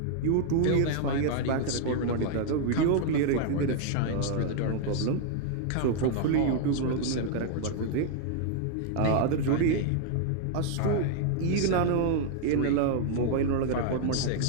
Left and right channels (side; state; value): both; different; correlation 0.00